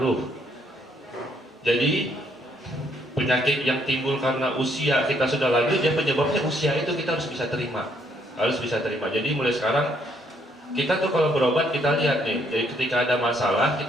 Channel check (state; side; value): normal; both; correlation 0.69